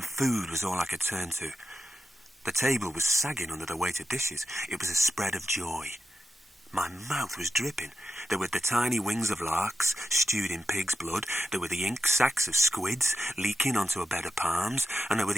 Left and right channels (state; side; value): normal; both; correlation 0.88